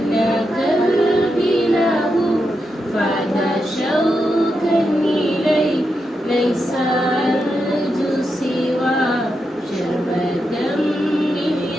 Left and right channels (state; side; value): normal; both; correlation 0.86